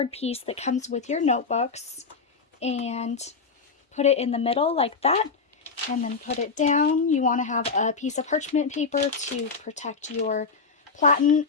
piece that comes with your notebooks and put it in the middle like that, and then put it down. You want to have a piece of parchment paper to protect your platen,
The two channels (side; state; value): right; quieter; 4.8 dB